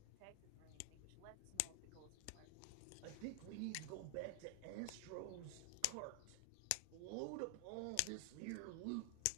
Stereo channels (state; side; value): different; both; correlation 0.00